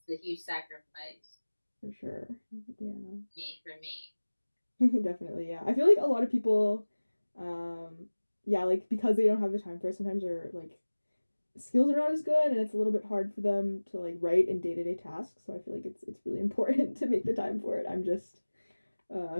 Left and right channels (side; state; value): both; inverted; correlation -1.00